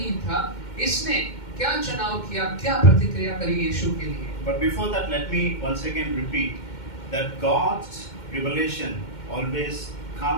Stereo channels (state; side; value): late; right; 2.1 ms